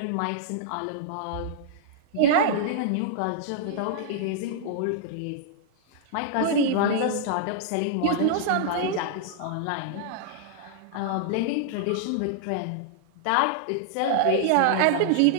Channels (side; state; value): both; different; correlation -0.01